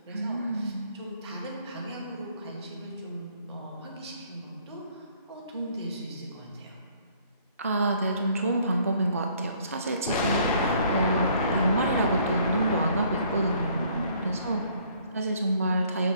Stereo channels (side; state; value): both; inverted; correlation -0.62